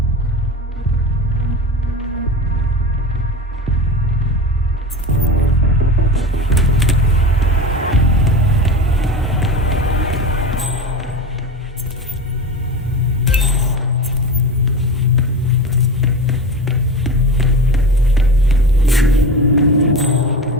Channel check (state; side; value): normal; both; correlation 0.28